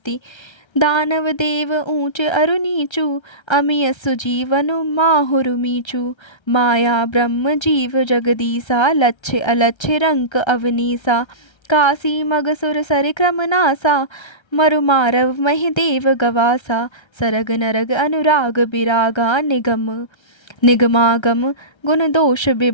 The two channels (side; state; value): right; late; 1.3 ms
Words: दानव देव ऊंच अरु नीचु, अमिय सुजीवन माहुरु मीचु। माया ब्रह्म जीव जगदीसा, लक्ष्य अलक्ष्य रंक अवनीसा। काशी मगसुर सर क्रम नासा, मरु मारव महि देव गवासा। सरग नरग अनुराग बिरागा, निगमागम गुण दोष